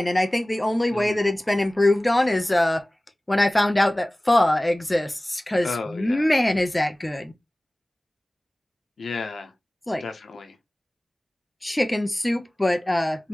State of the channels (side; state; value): both; normal; correlation 0.98